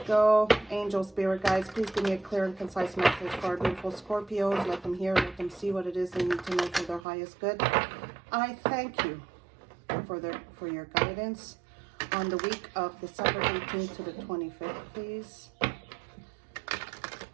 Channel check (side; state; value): left; drops out; at 7.0 s